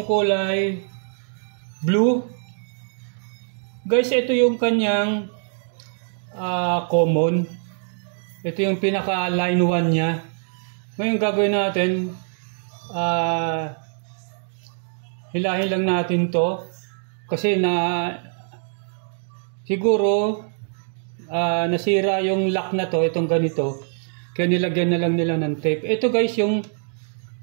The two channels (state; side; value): silent; left; digital silence